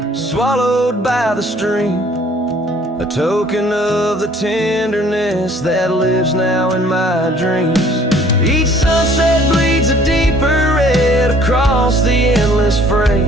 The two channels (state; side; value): normal; both; correlation 0.56